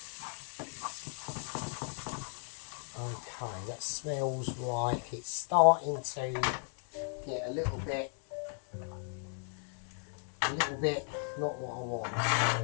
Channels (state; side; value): silent; right; 54 dB below the other